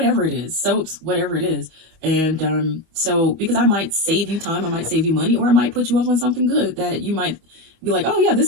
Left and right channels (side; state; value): left; late; 25 ms